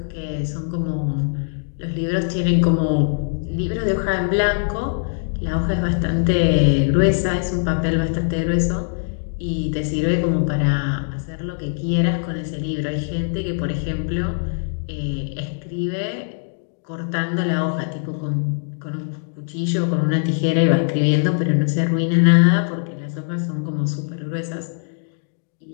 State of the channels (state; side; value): silent; right; 64 dB below the other